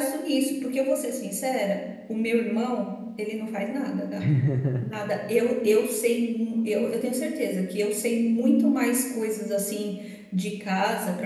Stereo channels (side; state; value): both; identical; correlation 1.00